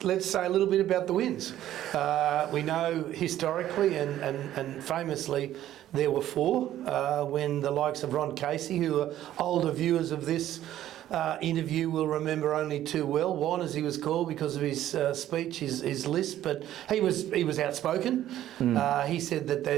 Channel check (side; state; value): left; quieter; 12.6 dB